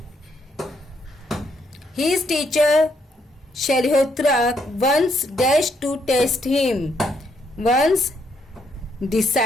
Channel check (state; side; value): normal; both; correlation 0.74